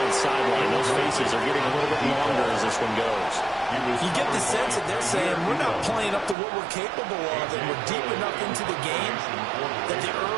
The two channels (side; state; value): left; drops out; at 6.4 s